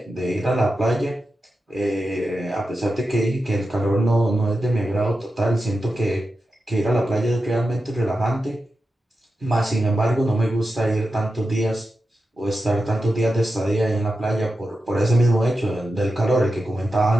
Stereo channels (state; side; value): normal; both; correlation 0.91